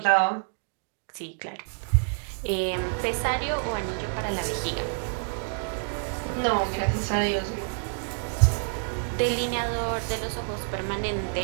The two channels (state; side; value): silent; left; 60 dB below the other